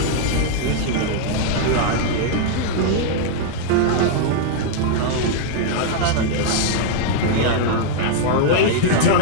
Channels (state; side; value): different; both; correlation -0.01